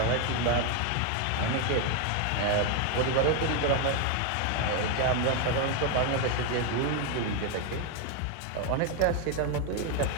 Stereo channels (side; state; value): both; different; correlation 0.01